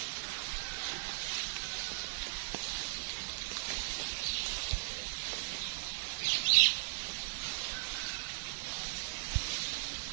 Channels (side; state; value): left; silent; 53 dB below the other